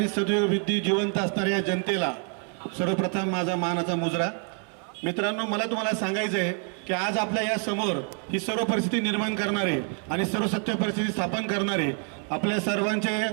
सदैव विद्या जिवंत असणाऱ्या जनतेला सर्वप्रथम माझा मानाचा मुजरा। मित्रांनो, मला तुम्हाला सांगायचं आहे की आज आपल्या या समोर ही सर्व परिस्थिती निर्माण करणारे आणि सर्व सत्य परिस्थिती स्थापन करणारे आपल्या सर्वांचे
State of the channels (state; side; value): quieter; left; 40.0 dB